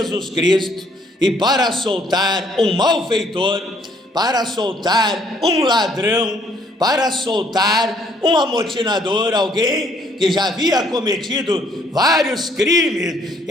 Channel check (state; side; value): normal; both; correlation 0.65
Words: Cristo e para soltar um malfeitor, para soltar um ladrão, para soltar um amotinador, alguém que já havia cometido vários crimes,